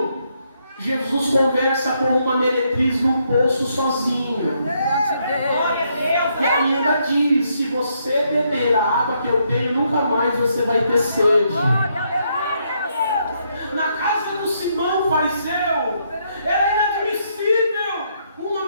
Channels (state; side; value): inverted; both; correlation -0.75